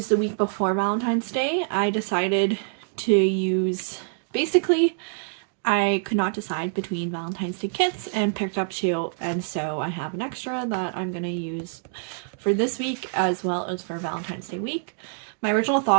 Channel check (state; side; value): silent; left; digital silence